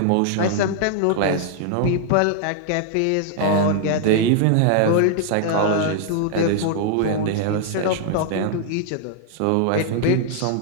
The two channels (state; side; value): different; both; correlation 0.00